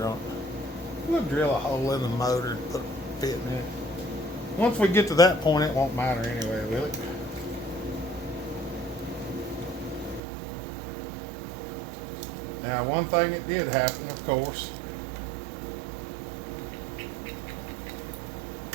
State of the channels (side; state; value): left; drops out; at 10.2 s